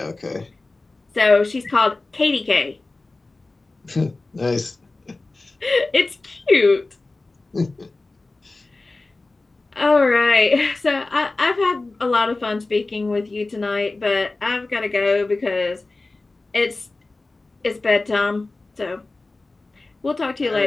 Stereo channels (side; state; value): right; quieter; 3.3 dB